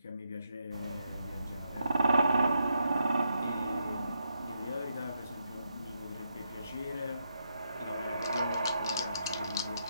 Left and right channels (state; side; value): inverted; both; correlation -0.80